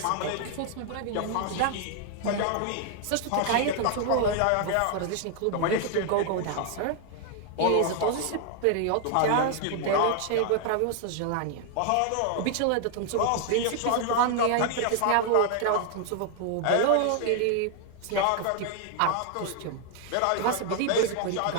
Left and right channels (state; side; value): different; both; correlation 0.00